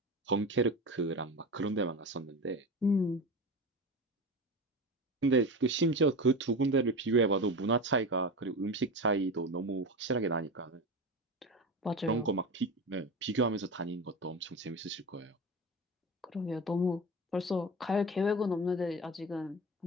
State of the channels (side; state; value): both; normal; correlation 0.26